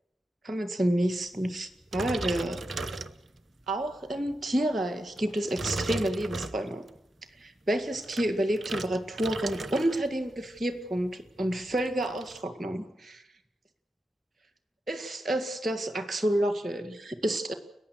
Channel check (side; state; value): both; normal; correlation 0.87